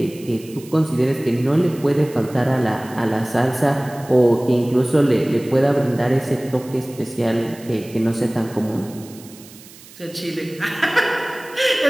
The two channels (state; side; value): noise; right; hiss, 21 dB below the sound